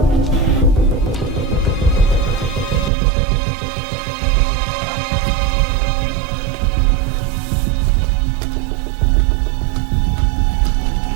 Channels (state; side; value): drops out; left; at 2.9 s